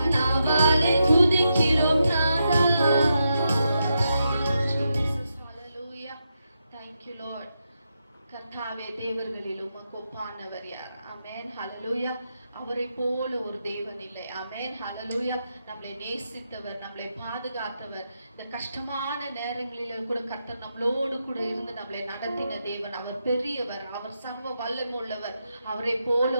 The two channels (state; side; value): inverted; both; correlation -0.85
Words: நாவாலே துதிக்கிறோம் நாதா. Hallelujah. Thank you Lord. கர்த்தாவே, தேவர்களில் உமக்கு ஒப்பானவர் யார்? ஆமென். ஹalleluya. அவரை போல ஒரு தேவன் இல்லை. ஆமென். ஹalleluya. நம்மளை நேசித்தவர், நம்மளை பாதுகாத்தவர், இந்த கஷ்டமான நேரங்களில கூட கர்த்தர் நம்மளோடு கூட இருந்து நம்மளை நடத்தின தேவன். அவர் பெரியவர், அவர் சர்வ வல்லமை உள்ளவர். அவரை போல